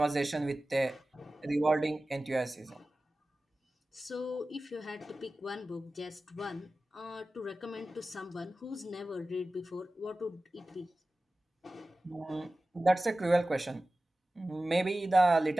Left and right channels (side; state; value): both; normal; correlation 0.96